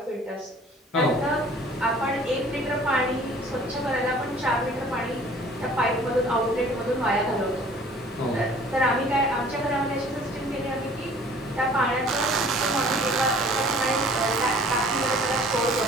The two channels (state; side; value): normal; both; correlation 0.51